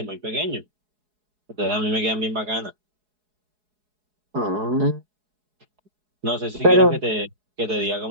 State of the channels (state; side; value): late; left; 4.7 ms